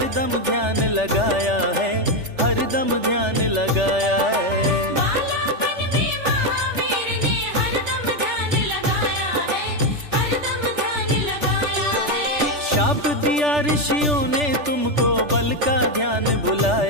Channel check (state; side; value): late; left; 3.4 ms